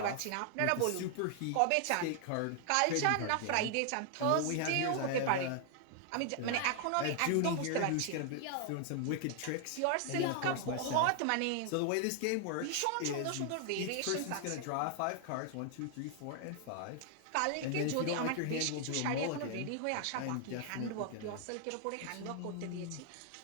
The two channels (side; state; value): both; different; correlation 0.00